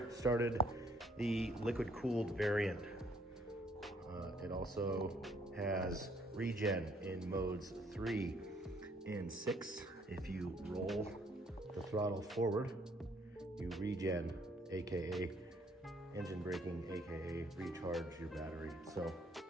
started the liquid cooled variant. It also has regen in modes 3 and 6. If you roll the throttle forward, you regen, AKA engine braking, AKA recharge your battery. So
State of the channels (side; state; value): both; normal; correlation 0.65